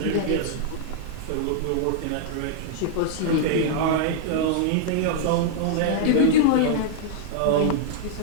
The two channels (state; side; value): different; both; correlation -0.01